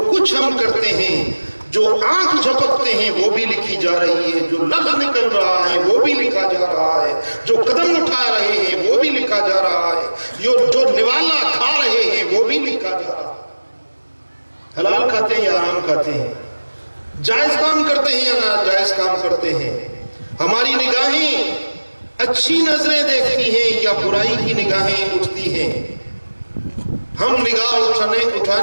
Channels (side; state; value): both; inverted; correlation -1.00